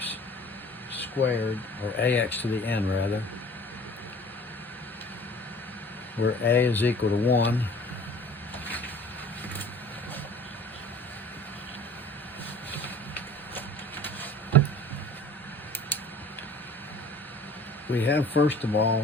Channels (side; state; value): both; normal; correlation 0.47